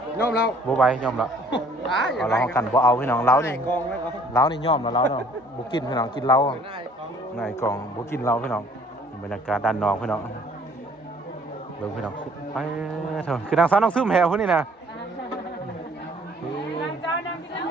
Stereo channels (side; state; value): both; normal; correlation 0.57